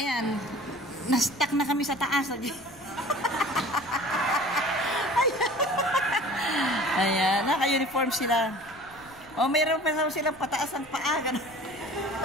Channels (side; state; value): left; noise; rumble, 25 dB below the sound